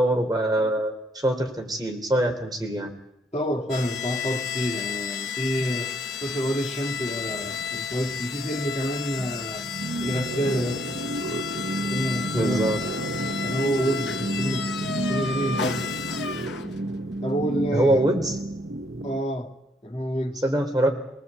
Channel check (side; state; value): both; normal; correlation 0.69